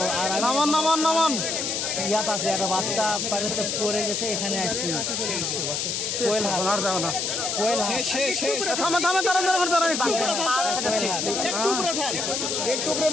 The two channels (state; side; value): noise; left; hiss, 1 dB below the sound